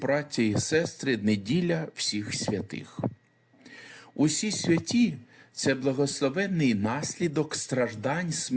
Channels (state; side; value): identical; both; correlation 1.00